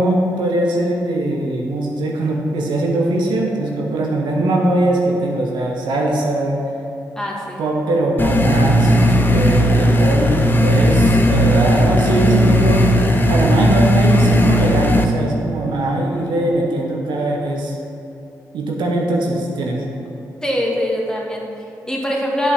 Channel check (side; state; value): both; normal; correlation 0.77